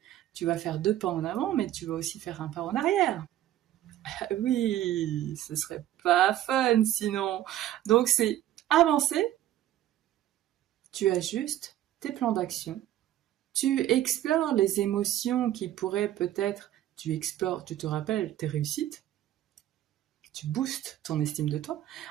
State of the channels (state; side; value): quieter; left; 12.9 dB